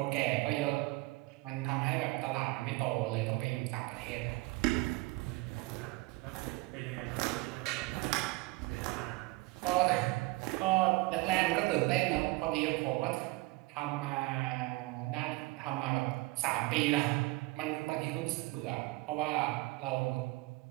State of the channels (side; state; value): left; quieter; 22.3 dB